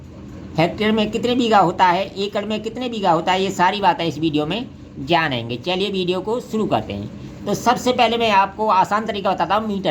हेक्टेयर में कितने बीघा होता है, एकड़ में कितने बीघा होता है, ये सारी बातें इस वीडियो में जानेंगे। चलिए वीडियो को शुरू करते हैं। तो सबसे पहले मैं आपको आसान तरीका बताता हूँ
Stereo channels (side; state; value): both; identical; correlation 1.00